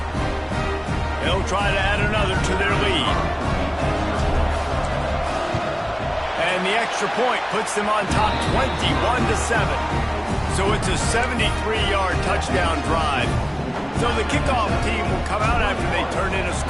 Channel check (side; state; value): both; identical; correlation 1.00